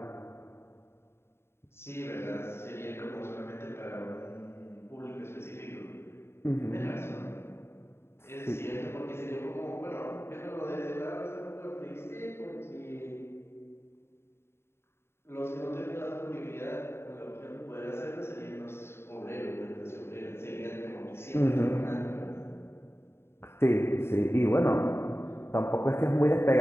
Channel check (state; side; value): late; right; 0.12 ms